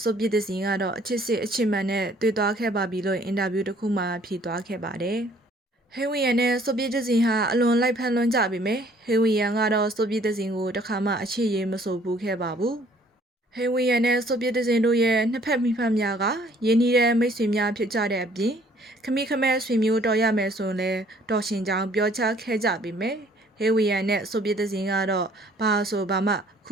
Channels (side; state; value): both; normal; correlation 0.59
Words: ဆိုဗီယက်ဇင်ကတော့အချစ်စစ်အချစ်မှန်နဲ့တွေ့သွားခဲ့ပါပြီလို့အင်တာဗျူးတစ်ခုမှာဖြေသွားခဲ့ပါတယ်။ဟေးဝီယန်နဲ့ဆိုဗီယက်ဇင်ဟာအလွန်လိုက်ဖက်လွန်းကြပေမဲ့ဟေးဝီယန်ကတော့ဆိုဗီယက်ဇင်ကိုတခါမှအချစ်ရေးမဆိုဘူးခဲ့ပါဘူး။ဟေးဝီယန်နဲ့ဆိုဗီယက်ဇင်တို့ရဲ့နှစ်ဖက်မိဖက်များကရင်းနှီးတဲ့မိတ်ဆွေများဖြစ်ကြတဲ့အပြင်ခမီခမဲဆွေမျိုးတော်ရမယ်ဆိုရင်လည်းတော်ရှင်ကြောင်ပြောချခဲ့ကြပြီမယ်ဟေးဝီယန်နဲ့ဆိုဗီယက်ဇင်ကတော့ဘာဆိုဘာမှခု